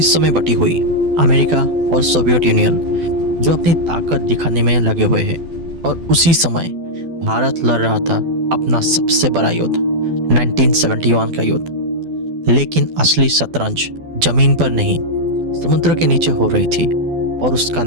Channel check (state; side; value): late; left; 12 ms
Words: में बटी हुई, अमेरिका और सोवियत यूनियन जो अपनी ताकत दिखाने में लगे हुए हैं, और उसी समय भारत लड़ रहा था अपना सबसे बड़ा युद्ध, 1971 का युद्ध। लेकिन असली शतरंज जमीन पर नहीं, समुद्र के नीचे हो रही थी, और उसका